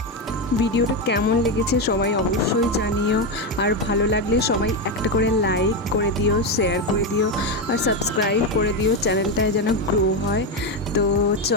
ভিডিওটা কেমন লেগেছে সবাই অবশ্যই জানিও। আর ভালো লাগলে সবাই একটা করে লাইক করে দিও, শেয়ার করে দিও, আর সাবস্ক্রাইব করে দিও, চ্যানেলটায় যেন গ্রো হয়। তো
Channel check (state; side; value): normal; both; correlation 0.10